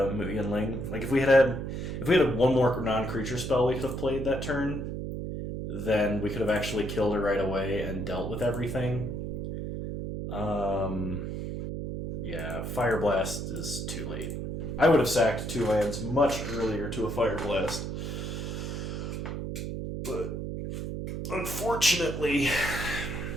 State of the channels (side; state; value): right; noise; hum, 4 dB below the sound